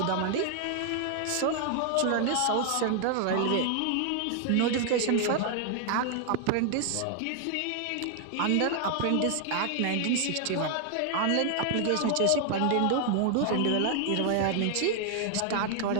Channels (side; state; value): both; different; correlation 0.00